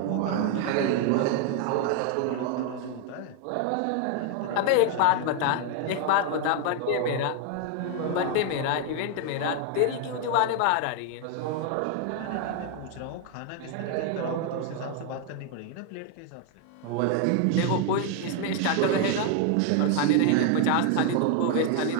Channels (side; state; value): both; different; correlation 0.00